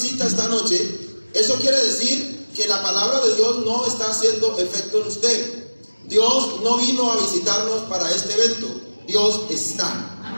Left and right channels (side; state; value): both; inverted; correlation -1.00